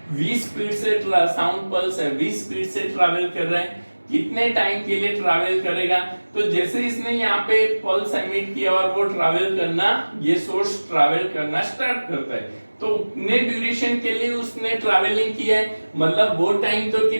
v स्पीड से, साउंड पल्स है v स्पीड से ट्रैवल कर रहा है, कितने टाइम के लिए ट्रैवल करेगा, तो जैसे इसने यहाँ पे पल्स एमिट किया और वो ट्रैवल करना, ये सोर्स ट्रैवल करना स्टार्ट करता है, तो उतने ड्यूरेशन के लिए उसने ट्रैवलिंग किया है, मतलब वो टाइम तो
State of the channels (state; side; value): inverted; both; correlation -1.00